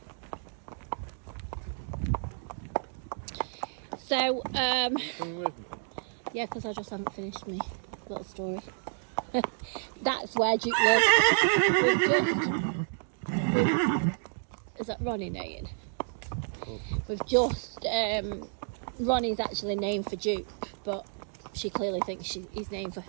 So, yeah, because I just haven't finished my little story. That's where Jupe lives. Is that Ronnie name? We've just, Ronnie's actually named for Duke, but she clearly thinks he's named for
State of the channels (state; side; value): silent; left; digital silence